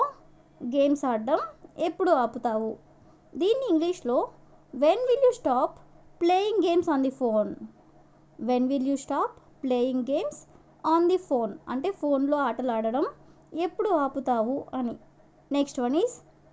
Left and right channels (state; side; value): identical; both; correlation 1.00